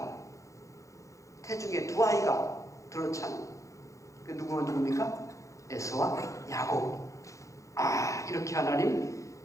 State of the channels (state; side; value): late; right; 0.15 ms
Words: 태중에 두 아이가 들어찬, 그 누굽니까? 에서와 야곱. 이렇게 하나님